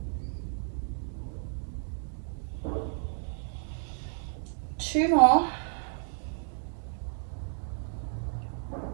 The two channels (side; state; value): left; silent; 57 dB below the other